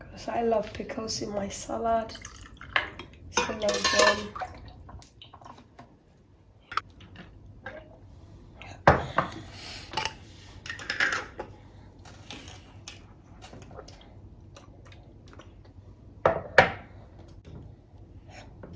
I love pickles in my salad. So I love them.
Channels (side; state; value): both; identical; correlation 1.00